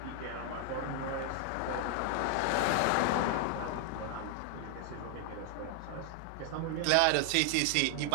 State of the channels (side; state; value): both; different; correlation 0.00